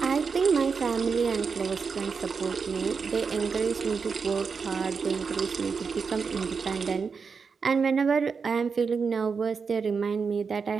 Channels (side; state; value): left; quieter; 5.4 dB